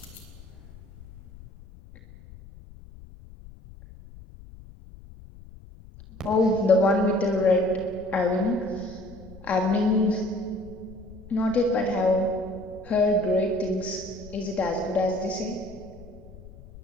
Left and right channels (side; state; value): left; noise; rumble, 19 dB below the sound